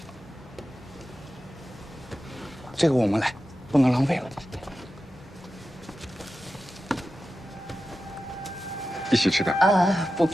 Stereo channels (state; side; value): normal; both; correlation 0.92